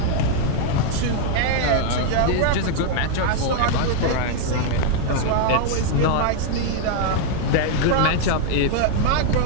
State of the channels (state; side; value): different; both; correlation 0.00